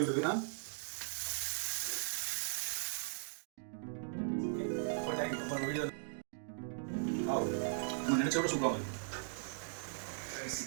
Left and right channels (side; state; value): left; silent; digital silence